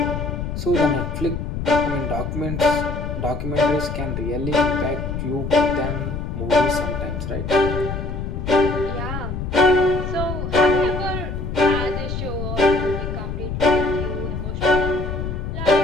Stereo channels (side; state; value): left; noise; rumble, 4 dB below the sound